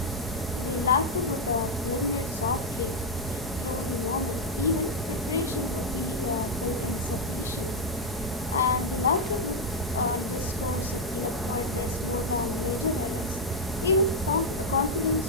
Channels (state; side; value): normal; both; correlation 0.00